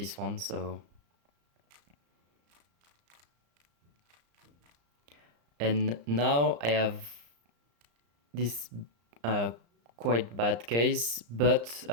one. So, and now I have this quite bad case, but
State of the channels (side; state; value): left; late; 34 ms